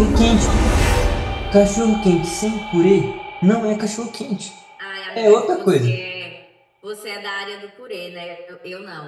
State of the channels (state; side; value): identical; both; correlation 1.00